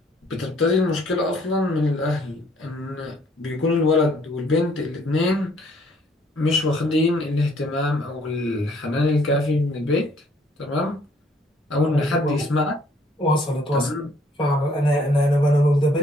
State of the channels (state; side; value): normal; both; correlation 0.63